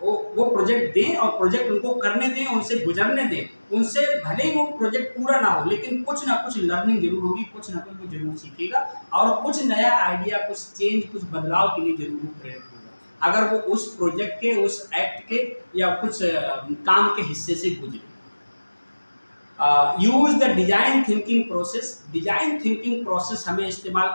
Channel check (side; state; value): both; inverted; correlation -1.00